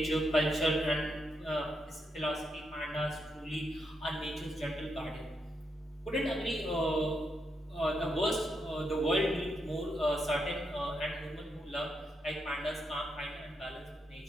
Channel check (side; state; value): both; normal; correlation 0.81